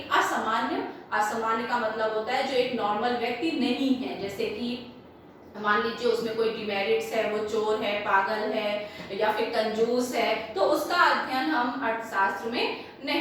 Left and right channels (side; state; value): both; identical; correlation 1.00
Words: असामान्य का मतलब होता है जो एक नॉर्मल व्यक्ति नहीं है, जैसे कि मान लीजिए उसमें कोई डिमेरिट्स है, वो चोर है, पागल है या फिर कंजूस है, तो उसका अध्ययन हम अर्थशास्त्र में